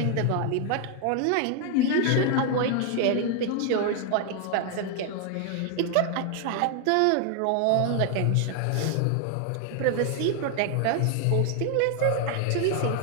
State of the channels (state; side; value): different; both; correlation 0.01